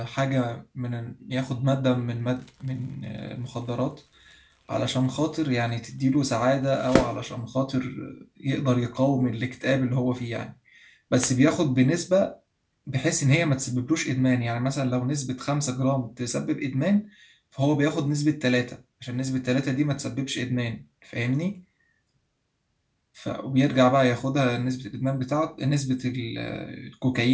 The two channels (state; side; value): identical; both; correlation 1.00